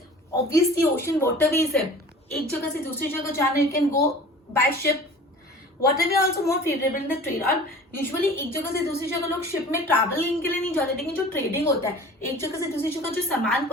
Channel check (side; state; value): both; normal; correlation 0.43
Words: Obviously ocean waterways है, एक जगह से दूसरी जगह जाना, you can go by ship. Waterway also more favourable in the trade. और यूजुअली एक जगह से दूसरी जगह लोग शिप में ट्रैवलिंग के लिए नहीं जाते, लेकिन जो ट्रेडिंग होता है, एक जगह से दूसरी जगह जो सामान